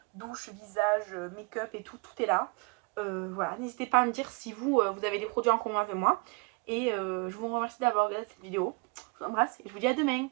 douche, visage, make-up et tout, tout est là. Voilà, n'hésitez pas à me dire si vous, vous avez des produits en commun avec moi. Et je vous remercie d'avoir regardé cette vidéo. Je vous embrasse et je vous dis à demain.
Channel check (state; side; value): quieter; left; 30.1 dB